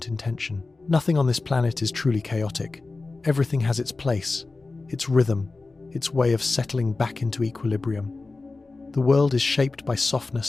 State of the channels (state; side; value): quieter; right; 3.6 dB